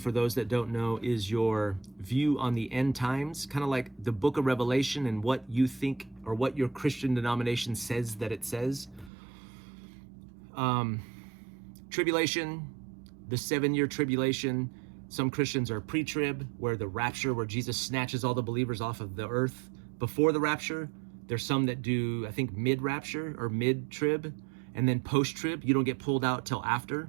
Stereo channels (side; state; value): left; drops out; at 9.1 s